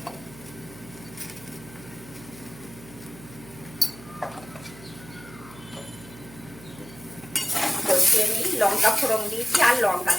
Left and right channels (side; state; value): right; noise; hum, 18 dB below the sound